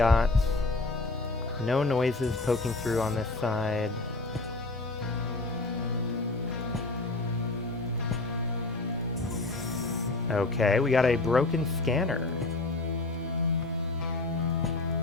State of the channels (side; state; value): right; quieter; 3.1 dB